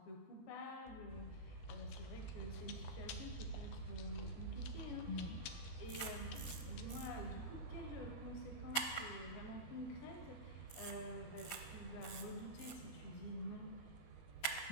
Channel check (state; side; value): late; right; 12 ms